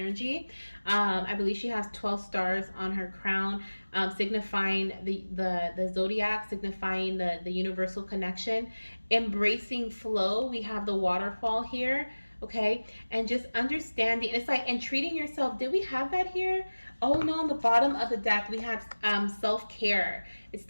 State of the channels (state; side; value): inverted; both; correlation -1.00